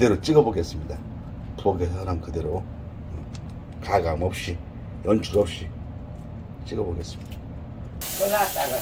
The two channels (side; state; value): both; identical; correlation 1.00